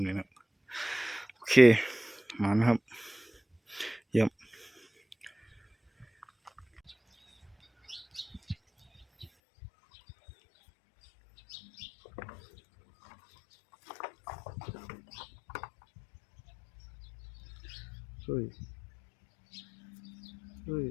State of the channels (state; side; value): drops out; right; at 9.3 s